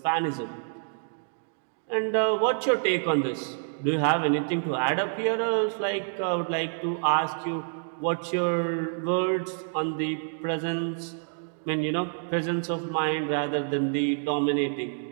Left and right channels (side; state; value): left; silent; digital silence